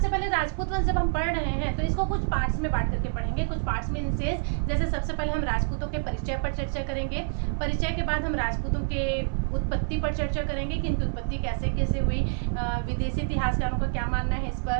पहले राजपूत वंश जब हम पढ़ रहे हैं तो इसको कुछ पार्ट्स में बांट करके पढ़ेंगे। कुछ पार्ट्स में इंसेस, जैसे सबसे पहले हम राजपूतों के परिचय पर चर्चा करेंगे। परिचय के बाद हम राजपूतों के उत्पत्ति पर चर्चा करेंगे कि इनकी उत्पत्ति कैसे कैसे हुई, विदेशी इतिहासकारों का क्या मानना है इस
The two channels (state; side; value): silent; left; digital silence